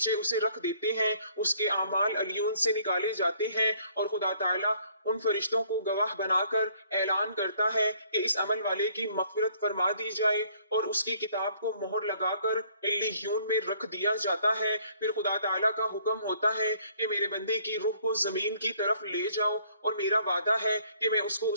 उसे रख देते हैं। उसके आमाल अलियून से निकाले जाते हैं और खुदा ताला उन फरिश्तों को गवाह बनाकर ऐलान करता है कि इस अमल वाले की मग़फ़िरत फरमा दी जाए, और उसकी किताब को मोहर लगाकर इल्लियून में रख दिया जाता है। फिर खुदा ताला का हुक्म होता है कि मेरे बंदे की रूह को जमीन की तरफ ले जाओ, और मेरा वादा है कि मैं उसको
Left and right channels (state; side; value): inverted; both; correlation -0.62